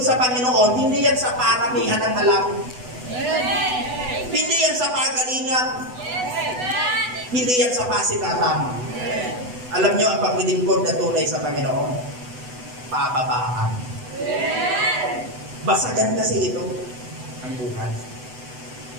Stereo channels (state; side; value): late; left; 8.0 ms